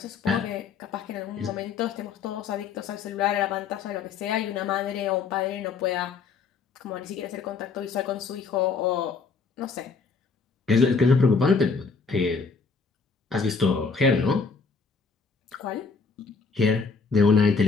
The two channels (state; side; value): quieter; right; 5.0 dB